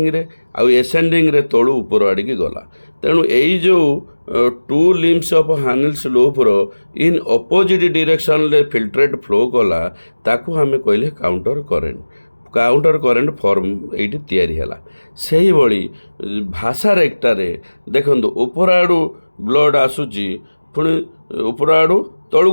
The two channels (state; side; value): inverted; both; correlation -1.00